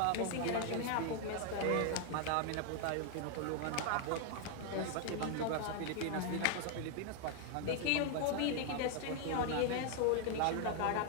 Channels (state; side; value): different; both; correlation 0.00